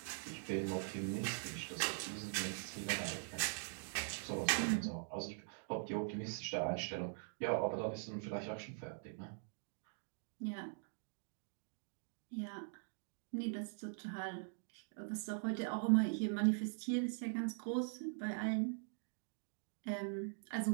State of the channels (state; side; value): silent; left; digital silence